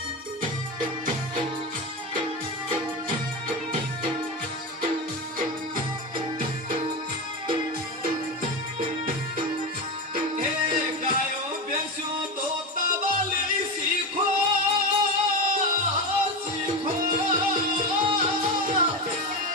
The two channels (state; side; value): normal; both; correlation 0.18